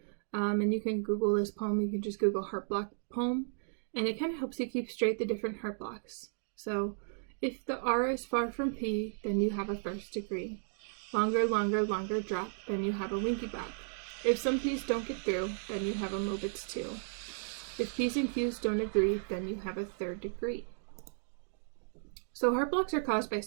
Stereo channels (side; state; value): left; silent; digital silence